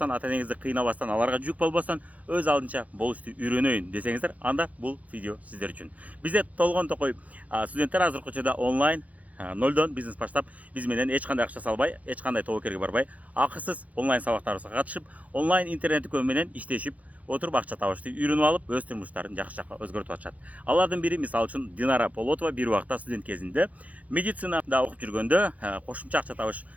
ата энеңизди кыйнабастан, аларга жүк болбостон, өз алдынча болушту үйрөнөйүн десеңиздер, анда бул видео сиздер үчүн. Бизде толгон токой студенттер азыркы учурда онлайн нолдон бизнес баштап, биз менен эч кандай акча салбай, эч кандай тобокерге барбай, акысыз онлайн сабактарыбызга катышып, онлайн интернет дүкөн менен иштешип, отуруп акча табышты үйрөнүп алып, өз турмуштарын жакшы жакка өзгөртүп атышат. Алардын бири мисалы үчүн Динара Полотова бир убакта студент кезинде медицинада окуп жүргөндө кошумча акча табыш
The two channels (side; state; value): left; late; 0.071 ms